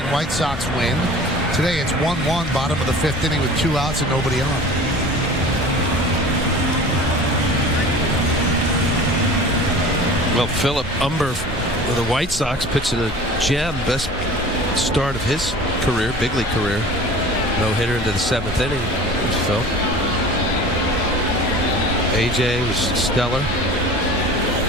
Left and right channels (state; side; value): normal; both; correlation 0.41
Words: White Sox win. Today, it's 1-1, bottom of the 5th inning with 2 outs and nobody on. Well, Philip Umber with the White Sox pitching a gem, best start of his career, big league career. No hitter into the 7th inning. There's Phil. AJ was stellar.